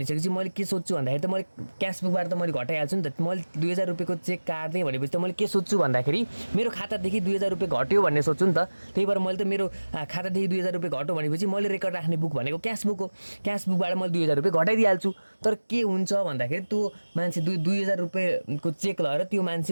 मैले के सोध्छु भन्दाखेरि त मैले क्यासबुकबाट त मैले घटाइहाल्छु नि त। मैले 2000 रुपियाँको चेक काट्दै भनेपछि त मैले के सोध्छु भन्दाखेरि मेरो खातादेखि 2000 रुपियाँ घट्यो भन्ने सोध्छु नि त। त्यही भएर मैले त मेरो खातादेखि 2000 रुपियाँ घट्यो भनेपछि मैले रेकर्ड राख्ने बुक भनेको क्यासबुक हो, क्यासबुकबाट मैले 2000 रुपियाँ घटाइदिइहाल्छु। तर के हुन्छ भन्दाखेरि त्यो मान्छे 2000 रुपियाँको चेक लगेर त्यो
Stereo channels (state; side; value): inverted; both; correlation -1.00